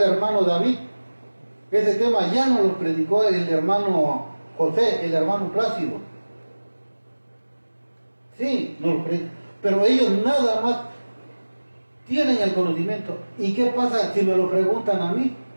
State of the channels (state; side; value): inverted; both; correlation -1.00